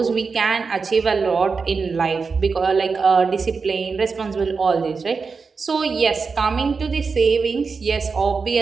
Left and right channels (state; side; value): quieter; left; 4.9 dB